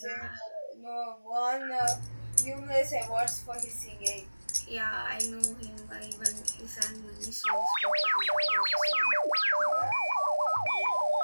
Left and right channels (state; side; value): inverted; both; correlation -1.00